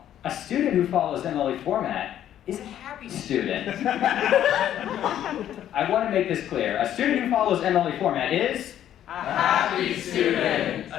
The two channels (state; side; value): quieter; right; 11.1 dB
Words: a student who follows MLA format is a happy student. I want to make this clear. A student who follows MLA format is A happy student.